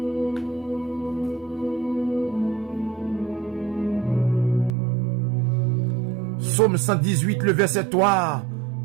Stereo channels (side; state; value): left; drops out; at 4.7 s